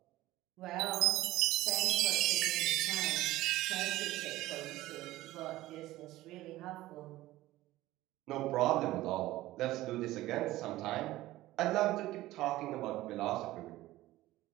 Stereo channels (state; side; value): quieter; left; 16.6 dB